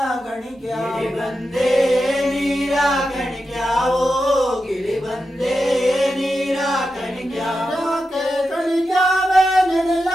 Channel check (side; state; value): both; normal; correlation 0.89